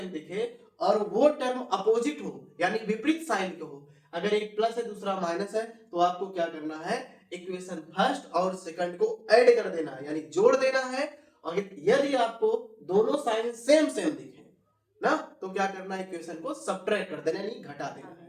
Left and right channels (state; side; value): identical; both; correlation 1.00